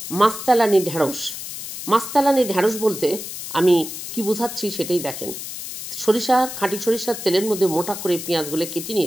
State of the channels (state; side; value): noise; left; hiss, 9 dB below the sound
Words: মাছতালানি ঢেঁড়স। মাছতালানি ঢেঁড়স বলতে আমি কি বোঝাচ্ছি সেটাই দেখেন। খাঁটি সরিষার তেলের মধ্যে মোটা করে পেঁয়াজগুলো কেটে